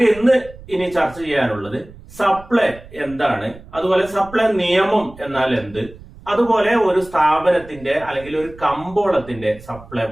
ഇനി ചർച്ച ചെയ്യാനുള്ളത് സപ്ലൈ എന്താണ്, അതുപോലെ സപ്ലൈ നിയമം എന്നാൽ എന്ത്, അതുപോലെ ഒരു സ്ഥാപനത്തിന്റെ അല്ലെങ്കിൽ ഒരു കമ്പോളത്തിന്റെ സപ്ലൈ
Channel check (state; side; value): noise; right; rumble, 19 dB below the sound